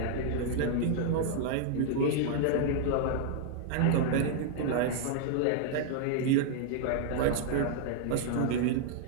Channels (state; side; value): different; both; correlation -0.01